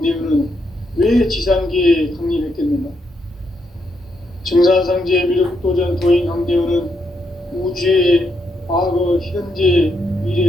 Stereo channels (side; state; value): both; normal; correlation 0.79